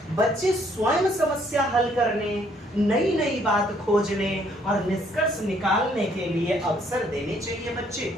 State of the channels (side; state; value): both; normal; correlation 0.66